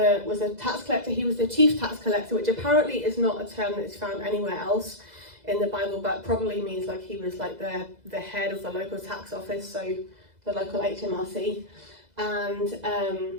a tax collector. He was the chief tax collector, which apparently is not a term that is found anywhere else in the Bible, but probably means like he was like the head of the local tax office, so the local HMRC,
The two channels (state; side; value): late; left; 2.0 ms